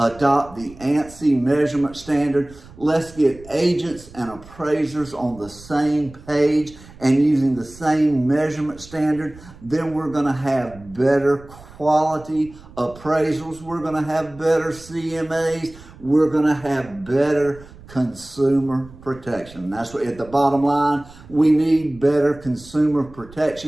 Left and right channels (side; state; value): right; noise; rumble, 20 dB below the sound